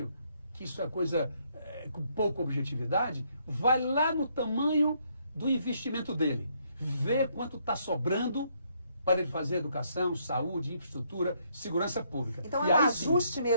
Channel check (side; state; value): both; inverted; correlation -0.72